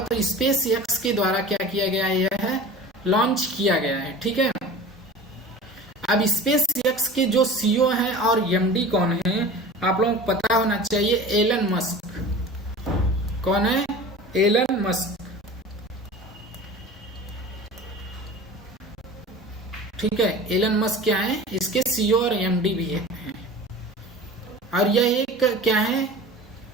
तो स्पेस एक्स के द्वारा क्या किया गया, यह है लॉन्च किया गया है। ठीक है, अब स्पेस एक्स के जो सीईओ हैं और एमडी कौन है आप लोगों को पता होना चाहिए, एलन मस्क। कौन है, एलन मस्क। ठीक है, एलन मस्क क्या है, इसके सीईओ और एमडी भी है, और यह एक क्या है,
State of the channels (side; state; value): both; normal; correlation 0.38